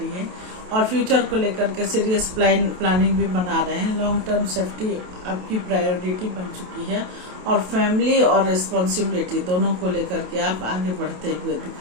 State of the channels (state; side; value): late; left; 27 ms